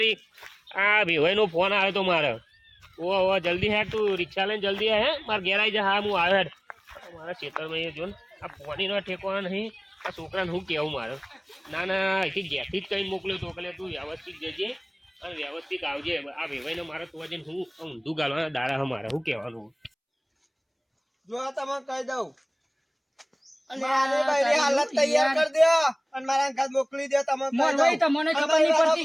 આ ભેવાઈનો ફોન આવ્યો તો મારે ઓ જલ્દી હેઠ તું રિક્ષા લઈને જલ્દી હે મારે ઘેર આવી જા હા હું આવ્યો હેઠ મારા ખેતરમાં જો ને આ પાણીનો ઠેકવાનો નહીં આ છોકરાને શું કહેવું મારે ના ના અહીંથી ઘેરથી જ કંઈ મોકલ્યો તો એટલે તું વ્યવસ્થિત જજે અને વ્યવસ્થિત આવજે આ ભેવાઈને મારે તું જઈને હું ઊંધું ગાલવાના દાડા મારે શું કહેવાનું જો આ તમને કહી દઉં મારે બૈરી હાલત તૈયાર કરી દો અને મારા ઘર મોકલી દો તમે કહી મોરવાઈ દઉં. તમને ખબર અમારી નહીં વાળો-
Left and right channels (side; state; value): both; identical; correlation 1.00